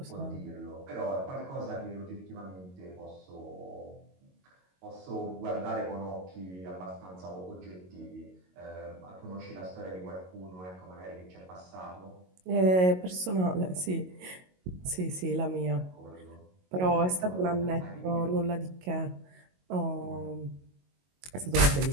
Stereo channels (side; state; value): left; late; 22 ms